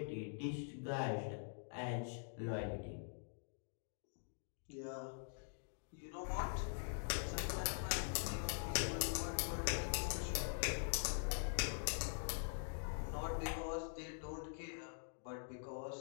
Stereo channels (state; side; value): silent; right; digital silence